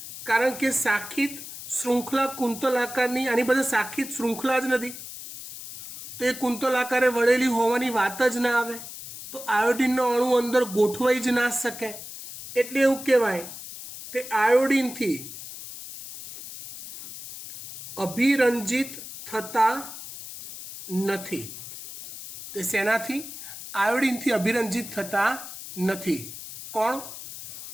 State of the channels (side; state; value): left; noise; hiss, 12 dB below the sound